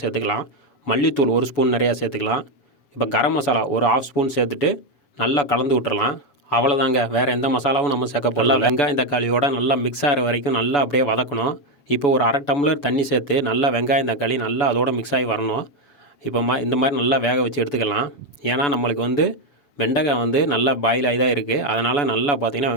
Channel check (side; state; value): right; late; 7.0 ms